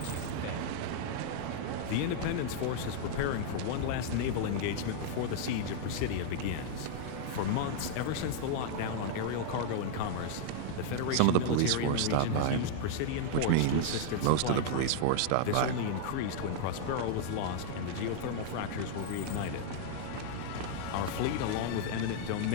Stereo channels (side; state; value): both; different; correlation -0.01